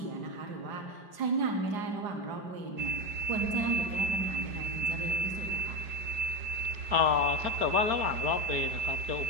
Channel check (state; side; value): late; left; 5.0 ms